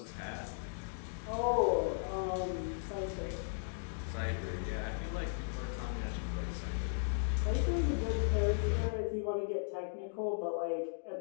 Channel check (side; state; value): right; silent; digital silence